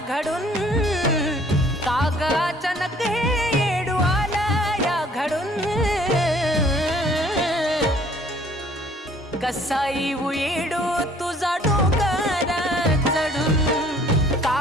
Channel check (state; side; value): normal; both; correlation 0.57